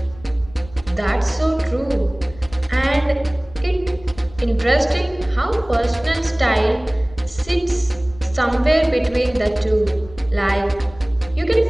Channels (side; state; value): left; noise; rumble, 21 dB below the sound